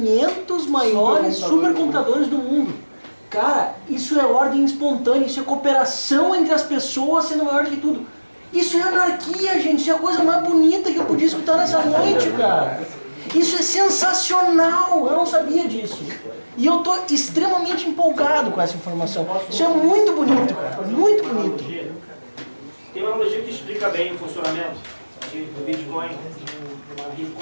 maiores supercomputadores do mundo. Cara, isso é ordem espontânea, isso é cooperação entre as pessoas sendo maior do que tudo. Isso é anarquia, gente, isso é a coisa mais bonita que eu podia escutar nessa noite, cara. Isso é sensacional, eu não sabia disso. E eu tô extremamente empolgado com essa informação. Isso é muito bonito, cara, muito bonito. Tem uma analogia que explica bem o funcionamento do Bitcoin, uma rede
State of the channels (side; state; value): both; inverted; correlation -1.00